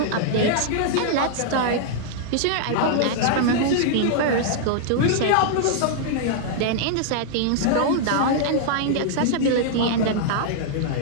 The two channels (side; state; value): both; different; correlation -0.01